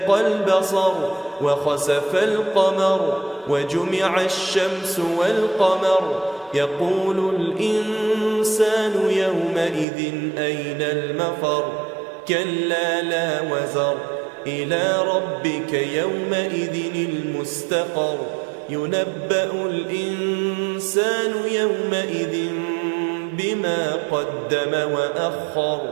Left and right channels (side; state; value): left; drops out; at 9.9 s